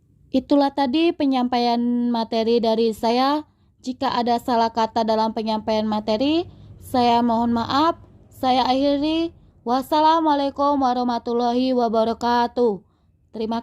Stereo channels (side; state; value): both; identical; correlation 1.00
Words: Itulah tadi penyampaian materi dari saya. Jika ada salah kata dalam penyampaian materi, saya mohon maaf. Saya akhiri. Wassalamualaikum warahmatullahi wabarakatuh. Terima